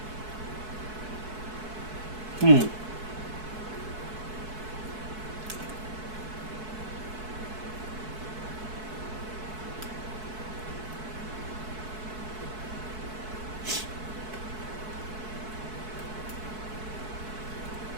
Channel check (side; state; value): left; late; 4.6 ms